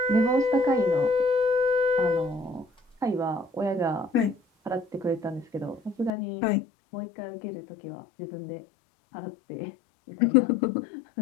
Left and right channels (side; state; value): right; drops out; at 6.1 s